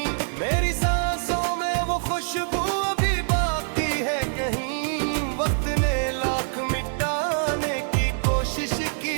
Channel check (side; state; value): left; silent; 62 dB below the other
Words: मेरी सांसों में वो खुशबू अभी बाकी है कहीं। वक्त ने लाख मिटाने की कोशिश की,